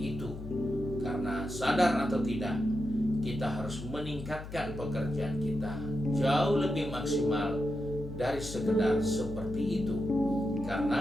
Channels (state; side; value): noise; left; hum, 11 dB below the sound